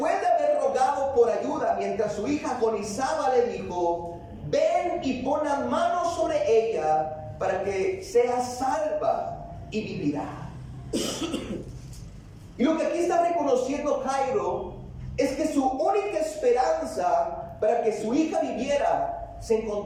de haber rogado por ayuda mientras su hija agonizaba, le dijo: ven y pon las manos sobre ella para que sea salva y vivirá. Y lo que aquí está reconociendo Jairo es que su única esperanza para que su hija viviera se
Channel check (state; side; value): identical; both; correlation 1.00